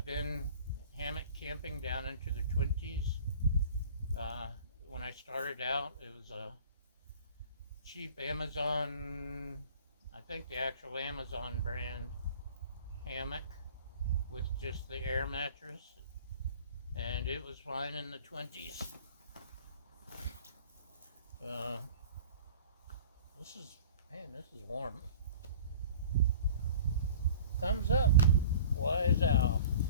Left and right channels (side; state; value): both; inverted; correlation -0.44